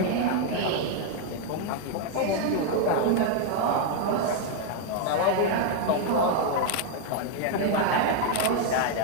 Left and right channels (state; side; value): different; both; correlation 0.00